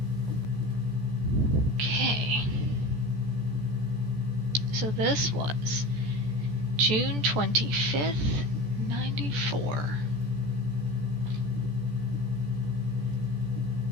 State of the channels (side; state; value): left; late; 14 ms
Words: Okay. So this was June 25th, 94.